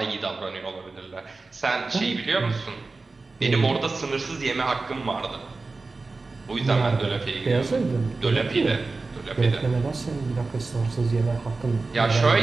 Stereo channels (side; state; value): left; quieter; 3.7 dB